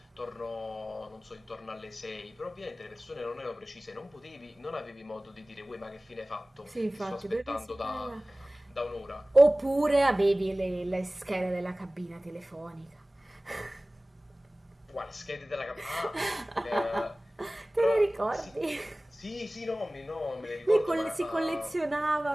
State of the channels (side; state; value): both; normal; correlation 0.98